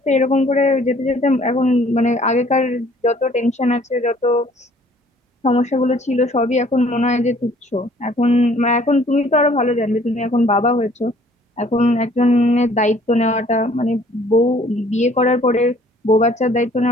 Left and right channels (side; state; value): both; normal; correlation 0.57